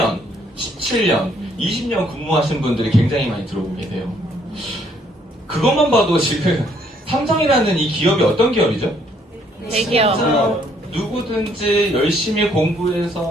17년, 20년 근무하신 분들이 굉장히 많이 들어오고 계세요. 그것만 봐도 지금 삼성이라는 이 기업이 어떤 기업이죠? 대기업. 누구든지 열심히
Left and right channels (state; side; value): normal; both; correlation 0.66